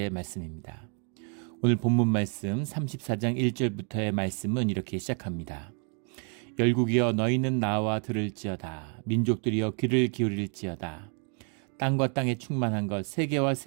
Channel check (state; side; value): quieter; left; 39.9 dB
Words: 말씀입니다. 오늘 본문 말씀 34장 1절부터의 말씀은 이렇게 시작합니다. 열국이여 너희는 나와 들을지어다. 민족들이여 귀를 기울일지어다. 땅과 땅에 충만한 것, 세계와